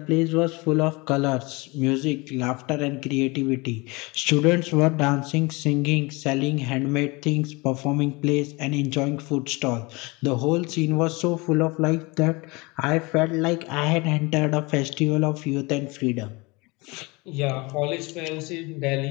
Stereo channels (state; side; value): quieter; right; 25.6 dB